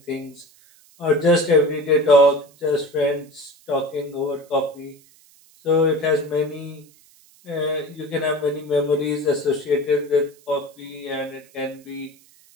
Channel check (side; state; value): right; noise; hiss, 28 dB below the sound